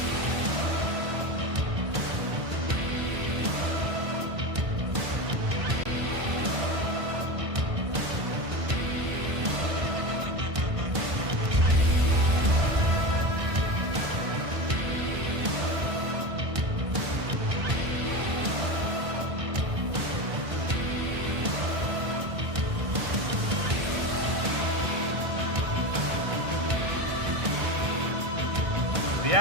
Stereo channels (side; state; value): left; late; 1.6 ms